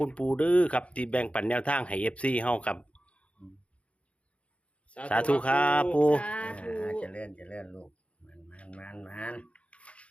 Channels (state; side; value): late; right; 0.062 ms